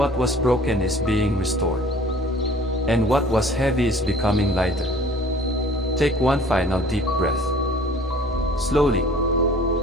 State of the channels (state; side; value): normal; both; correlation 0.50